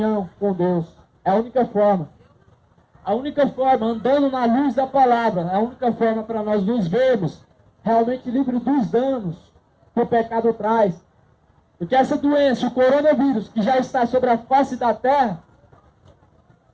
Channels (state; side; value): identical; both; correlation 1.00